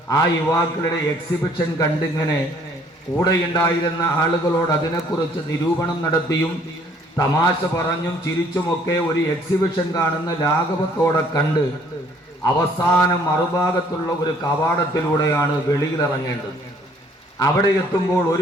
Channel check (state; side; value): normal; both; correlation 0.60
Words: ആ യുവാക്കളുടെ എക്സിബിഷൻ കണ്ടിങ്ങനെ കൂടെയുണ്ടായിരുന്ന ആളുകളോട് അതിനെക്കുറിച്ച് നിരൂപണം നടത്തിയും തമാശ പറഞ്ഞും ചിരിച്ചുമൊക്കെ ഒരു എക്സിബിഷൻ കാണുന്ന ലാഘവത്തോടെ കണ്ട് അവസാനം മറുഭാഗത്തുള്ള ഒരു കവാടത്തിലൂടെയാണ് വെളിയിലിറങ്ങേണ്ടത്. അവിടെ എത്തുമ്പോൾ